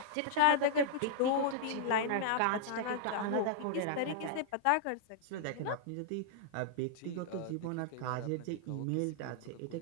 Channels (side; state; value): both; different; correlation -0.01